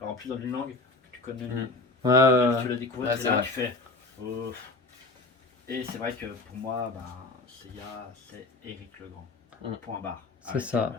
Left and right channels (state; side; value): quieter; right; 3.1 dB